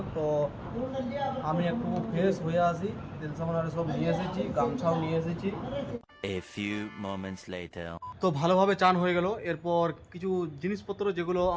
তো আমি একটু ফ্রেশ হয়ে আসি, তেল সাবান আর সব নিয়ে এসেছি, গামছাও নিয়ে এসেছি। A few moments later. তো ভালোভাবে চান হয়ে গেল। এরপর কিছু জিনিসপত্র যেগুলো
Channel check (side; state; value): both; identical; correlation 1.00